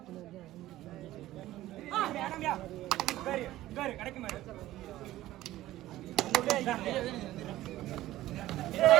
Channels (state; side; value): quieter; left; 15.3 dB